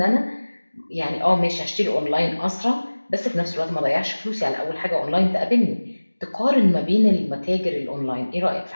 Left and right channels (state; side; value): inverted; both; correlation -1.00